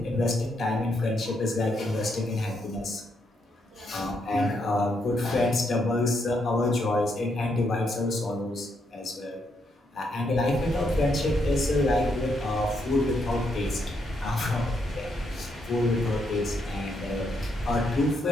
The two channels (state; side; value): normal; both; correlation 0.78